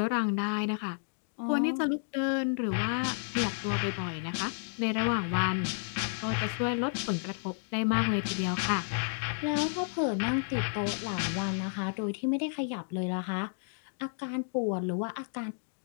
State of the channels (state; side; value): silent; right; digital silence